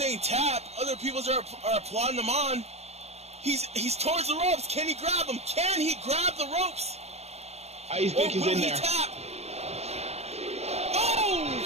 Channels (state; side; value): late; left; 0.31 ms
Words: tap. Other people are applauding him on. He's towards the ropes. Can he grab him? Can he grab the ropes? I think he's in there. Tap? Oh!